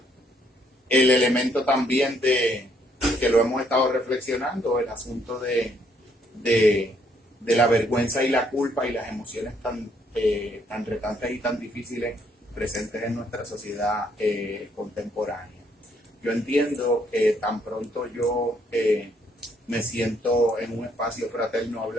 El elemento también de que lo hemos estado reflexionando, el asunto de la vergüenza y la culpa y las emociones tan retantes y tan difíciles presentes en nuestra sociedad contemporánea. Yo entiendo que tan pronto yo me siento en un espacio fraterno a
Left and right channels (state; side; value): normal; both; correlation 0.69